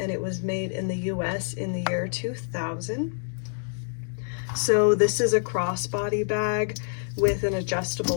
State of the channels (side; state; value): right; silent; digital silence